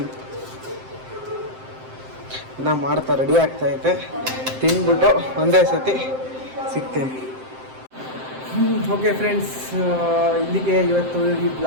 ಮಾಡ್ತಾ ರೆಡಿ ಆಗ್ತಾಯಿದೆ. ತಿಂದ್ಬಿಟ್ಟು ಒಂದೇ ಸತಿ ಸಿಗ್ತೀನಿ. ಓಕೆ ಫ್ರೆಂಡ್ಸ್, ಇಲ್ಲಿಗೆ ಇವತ್ತು ಈ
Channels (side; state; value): left; late; 7.7 ms